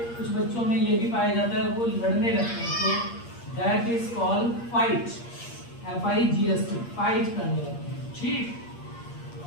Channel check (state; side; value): late; right; 8.5 ms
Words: बच्चों में ये भी पाया जाता है वो लड़ने लगते हैं, तो that is called fight, FIGHT, fight करने लगते हैं। ठीक,